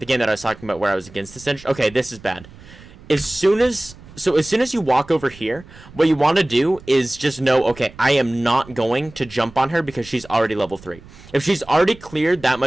I was talking about where I was against the Singed. Okay, this is bad. As soon as you walk over here, what you want to do is just know, okay, I am not going to jump on her because she's already level 3. If she's already cleared that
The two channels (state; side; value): noise; right; rumble, 21 dB below the sound